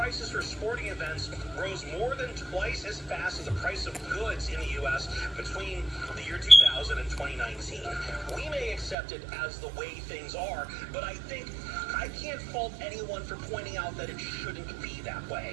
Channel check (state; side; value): drops out; left; at 9.0 s